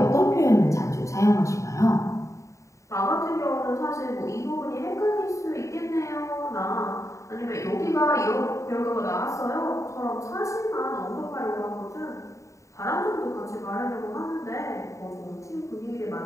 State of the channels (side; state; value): right; late; 0.15 ms